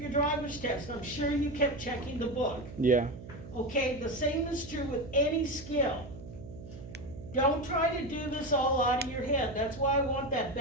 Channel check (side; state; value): right; noise; hum, 14 dB below the sound